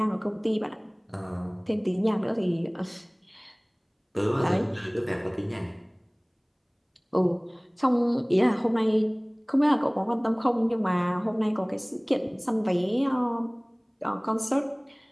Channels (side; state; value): both; identical; correlation 1.00